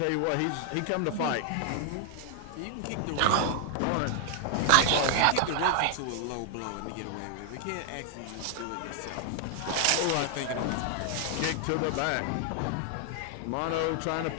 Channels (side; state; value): both; different; correlation 0.00